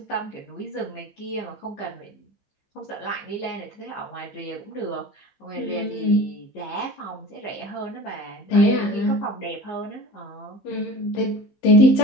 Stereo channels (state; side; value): late; right; 15 ms